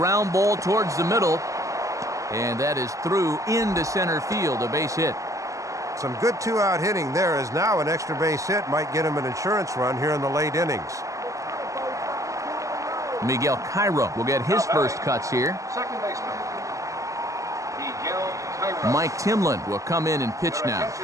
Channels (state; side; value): late; left; 0.16 ms